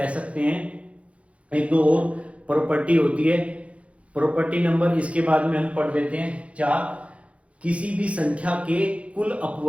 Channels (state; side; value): late; left; 0.063 ms